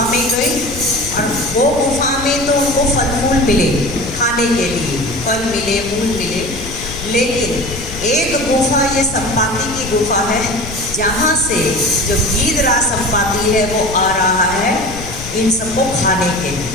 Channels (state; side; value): noise; left; rumble, 12 dB below the sound